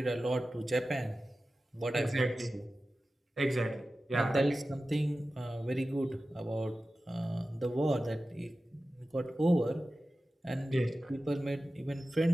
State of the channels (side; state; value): both; normal; correlation 0.94